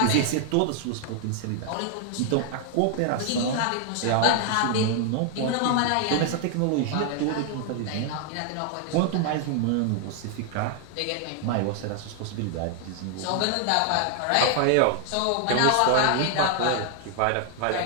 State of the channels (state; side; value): different; both; correlation 0.00